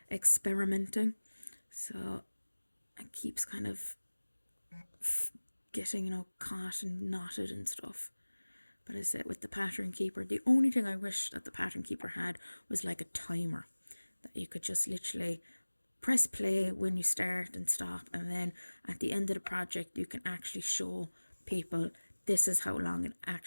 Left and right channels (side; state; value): both; inverted; correlation -1.00